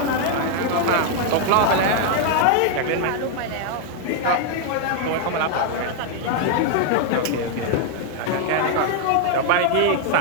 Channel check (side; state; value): both; different; correlation 0.00